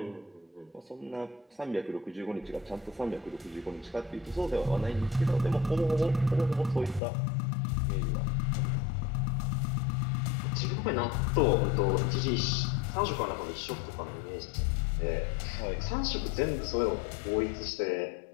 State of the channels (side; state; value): right; drops out; at 7.0 s